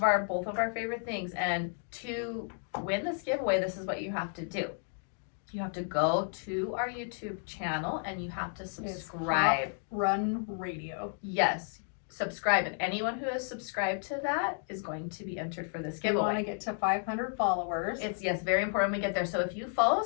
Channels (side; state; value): right; silent; 56 dB below the other